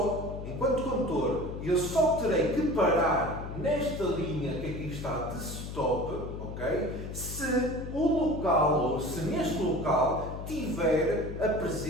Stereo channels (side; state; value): left; noise; hum, 8 dB below the sound